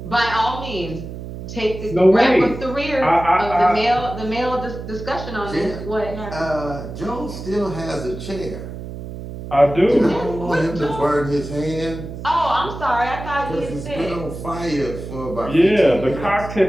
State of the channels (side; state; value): right; noise; hum, 10 dB below the sound